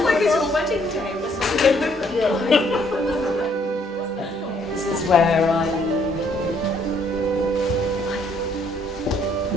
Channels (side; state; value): both; normal; correlation 0.67